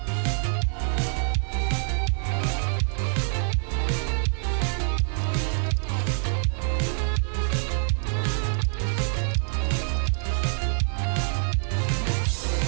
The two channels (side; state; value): left; silent; 57 dB below the other